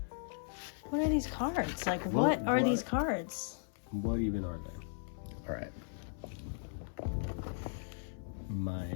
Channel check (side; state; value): right; silent; 53 dB below the other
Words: are these cards? Like, what are these cards? What even are they? All right.